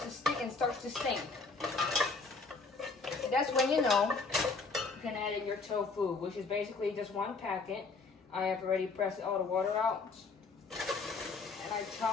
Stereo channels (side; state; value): right; quieter; 4.2 dB